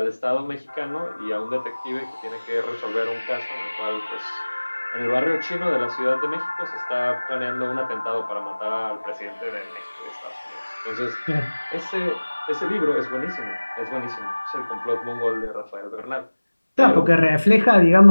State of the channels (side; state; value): both; inverted; correlation -1.00